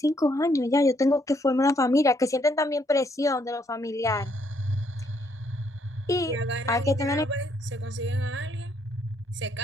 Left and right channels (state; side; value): normal; both; correlation 0.71